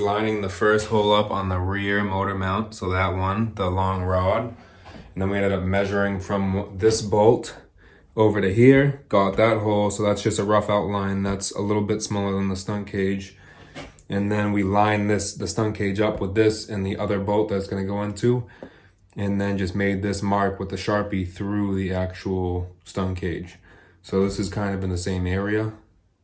the first hole up on the rear motor mount. So that one, the long rod. And then we ended up measuring from this bolt over to here, got that hole. So that's just a rough outline. That's a little bit smaller than the stunt cage. And then we line the stunt cage up with this and the other bolt that's gonna go into, and then just made this mark with the Sharpie through the actual stunt cage. So this is kind of in the same area.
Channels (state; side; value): identical; both; correlation 1.00